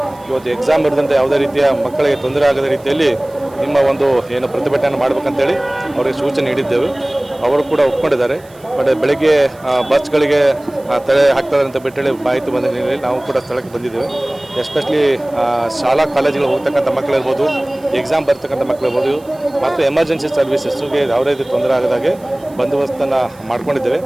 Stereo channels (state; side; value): noise; right; hiss, 27 dB below the sound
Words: ಇವತ್ತು ಎಕ್ಸಾಮ್ ಇರದಂತೆ ಯಾವುದೇ ರೀತಿಯ ಮಕ್ಕಳಿಗೆ ತೊಂದರೆ ಆಗದ ರೀತಿಯಲ್ಲಿ ನಿಮ್ಮ ಒಂದು ಏನು ಪ್ರತಿಭಟನೆ ಮಾಡಬೇಕಂತೇಳಿ ಅವರಿಗೆ ಸೂಚನೆ ನೀಡಿದ್ದೆವು. ಅವರು ಕೂಡ ಒಪ್ಕೊಂಡಿದ್ದಾರೆ. ಬಟ್ ಬೆಳಗ್ಗೆ ಬಸ್ಗಳಿಗೆ ತಡೆ ಹಾಕ್ತಾರೆ ಅಂತ ಬಿಟ್ಟೇಳಿ ಮಾಹಿತಿ ಬಂದ ಹಿನ್ನೆಲೆಯಲ್ಲಿ ನಾವು ಕೂಡ ಸ್ಥಳಕ್ಕೆ ಬಂದಿದ್ದೇವೆ. ಎಸ್ಪೆಷಲಿ ಶಾಲಾ ಕಾಲೇಜುಗಳು ಹೋಗ್ತಕ್ಕಂಥ ಮಕ್ಕಳಿರ್ಬೋದು, ಎಕ್ಸಾಮ್ ಬರ್ತಕ್ಕಂಥ ಮಕ್ಕಳಿರ್ಬೋದು ಮತ್ತು ಎಮರ್ಜೆನ್ಸಿ ಸರ್ವಿಸಸ್ಗೆ ಯಾವುದೇ ರೀತಿ ತೊಂದರೆ ಆಗದಾಗೆ ಬಂದೋಬಸ್ತನ್ನು ಮಾಡ್ಕೊಂಡಿದ್ದೇವೆ.